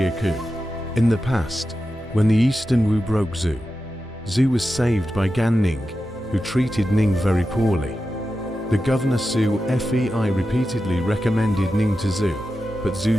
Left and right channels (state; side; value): normal; both; correlation 0.91